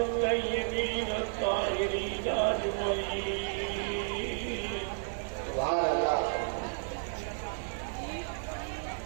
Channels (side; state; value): left; silent; 56 dB below the other